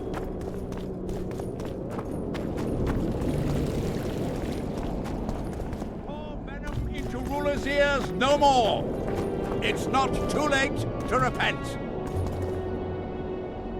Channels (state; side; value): identical; both; correlation 1.00